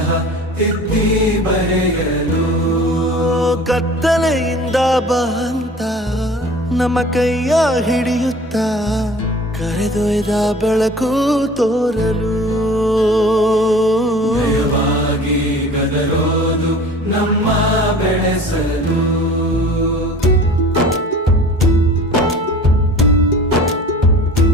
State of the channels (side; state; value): both; normal; correlation 0.44